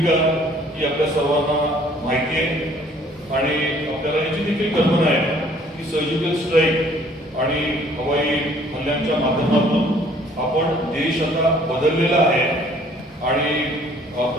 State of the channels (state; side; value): normal; both; correlation 0.58